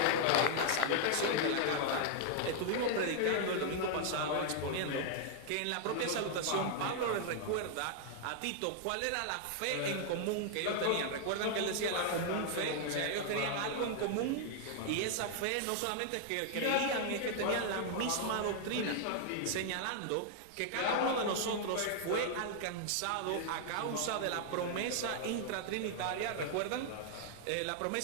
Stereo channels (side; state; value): both; different; correlation 0.00